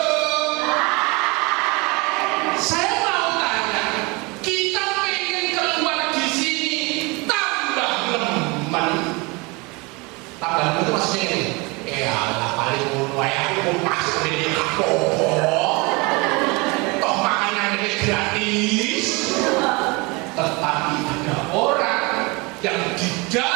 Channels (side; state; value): left; quieter; 26.9 dB